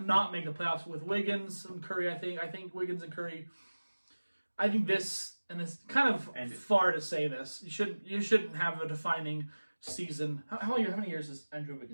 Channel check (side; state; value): both; inverted; correlation -1.00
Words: not make the playoffs with Wiggins and Curry. I think Wiggins and Curry. I think this, and it's kind of far to say this. You shouldn't have a defining season. How many years has Andrew